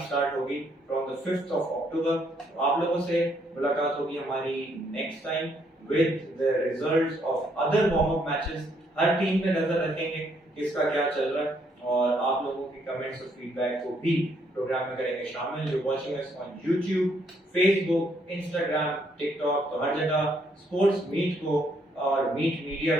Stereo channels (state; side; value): normal; both; correlation 0.71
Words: स्टार्ट होगी from the 5th of October। आप लोगों से मुलाकात होगी हमारी next time with the results of other warm up matches. Her team पे नजर रखेंगे किसका क्या चल रहा है, और आप लोगों के कमेंट्स और फीडबैक को भी प्रोग्राम में करेंगे शामिल। You watching us on YouTube, Facebook, Instagram, TikTok, तो हर जगह स्पोर्ट्स मीट को और मीट मीडिया